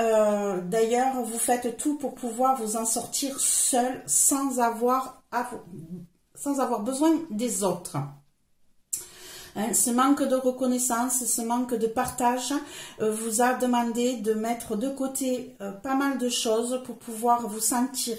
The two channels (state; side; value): identical; both; correlation 1.00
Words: vous faites tout pour pouvoir vous en sortir seul sans avoir besoin des autres. Ce manque de reconnaissance, ce manque de partage vous a demandé de mettre de côté pas mal de choses pour pouvoir vous